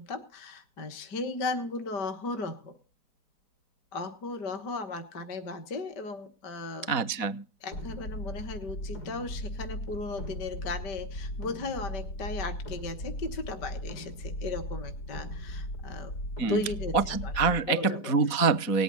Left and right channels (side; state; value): right; late; 4.2 ms